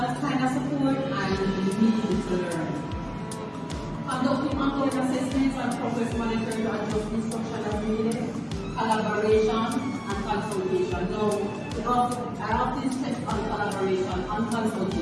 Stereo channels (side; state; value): both; identical; correlation 1.00